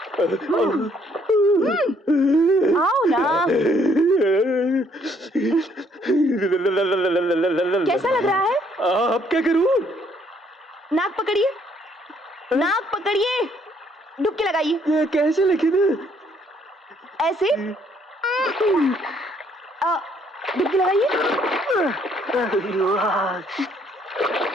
आओ ना। कैसा लग रहा है? अब क्या करूं? नाक पकड़िए, नाक पकड़िए, डुबकी लगाइए। ये कैसे? लेकिन ऐसे डुबकी लगाइए।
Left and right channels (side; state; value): both; normal; correlation 0.66